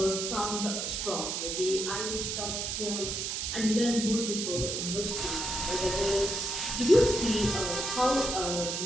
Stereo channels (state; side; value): noise; right; hiss, 2 dB below the sound